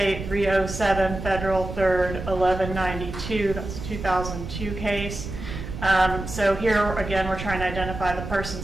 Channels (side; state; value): right; noise; rumble, 8 dB below the sound